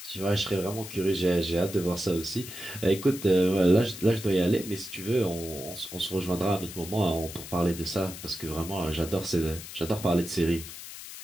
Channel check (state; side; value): noise; left; hiss, 12 dB below the sound